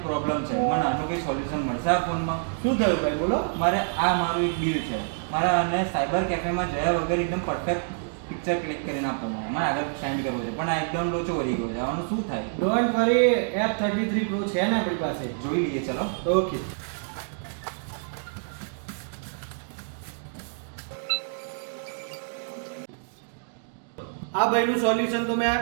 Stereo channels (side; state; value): left; silent; digital silence